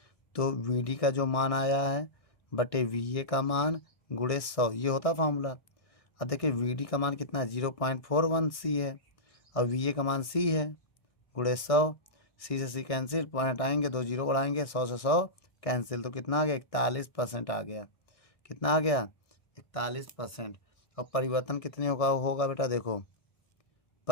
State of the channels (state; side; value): late; right; 1.6 ms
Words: तो VD का जो मान आया है बटे VA का मान गुणे 100, ये होता फार्मूला। अब देखिए VD का मान कितना है, 0.41 C है, और VA का मान C है, गुणे 100। C से C कैंसिल, पॉइंट आएंगे, 2 जीरो बढ़ाएंगे, 100 से 100 कैंसिल, तो कितना आ गया, 41% आ गया। कितना आ गया, 41%। और परिवर्तन कितने होगा बेटा, देखो